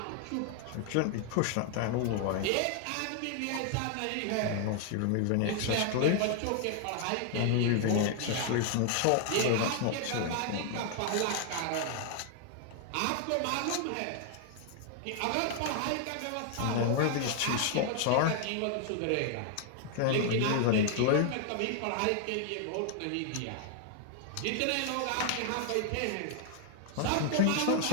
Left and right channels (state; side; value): different; both; correlation 0.00